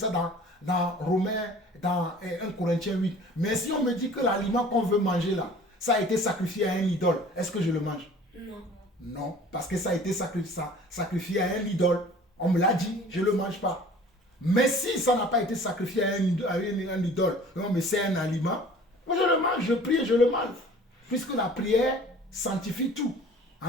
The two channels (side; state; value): both; normal; correlation 0.47